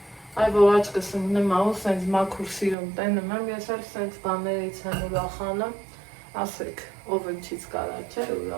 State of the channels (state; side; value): drops out; left; at 2.8 s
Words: Այ որ աչկս ընկնեմ ահու սենց մաքուր սիրում տենում եմ, ես էլ սենց բաներից եմ ուրախանում, ասեք, ով ընչից կարա չէ